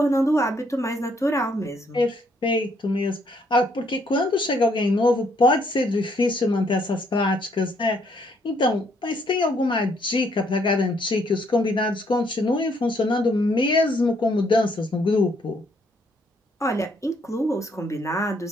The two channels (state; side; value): normal; both; correlation 0.69